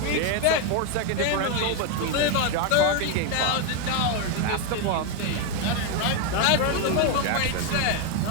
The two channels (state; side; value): different; both; correlation 0.02